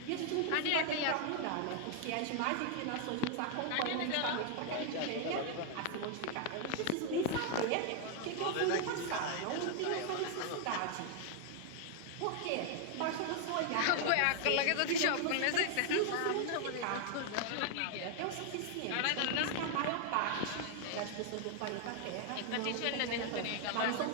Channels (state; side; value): different; both; correlation 0.00